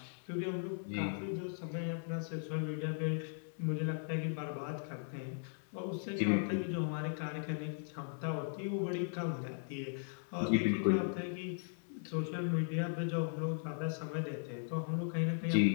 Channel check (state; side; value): silent; right; digital silence